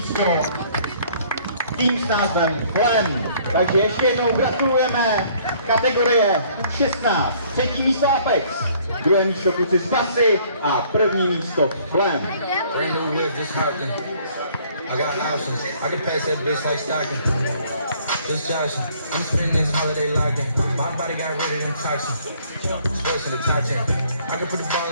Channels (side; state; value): both; inverted; correlation -0.59